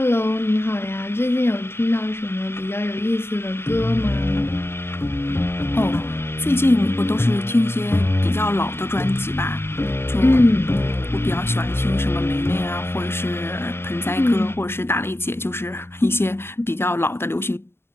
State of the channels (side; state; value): right; late; 0.11 ms